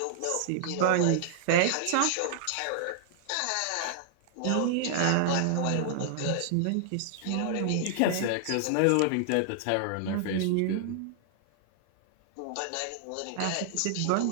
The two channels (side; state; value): both; different; correlation -0.01